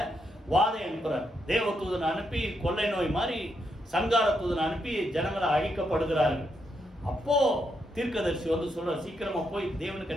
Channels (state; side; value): normal; both; correlation 0.80